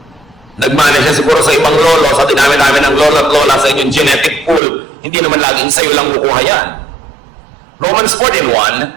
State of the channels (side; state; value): left; drops out; at 4.6 s